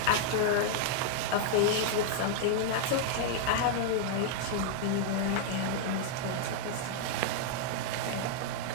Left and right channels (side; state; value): both; different; correlation -0.01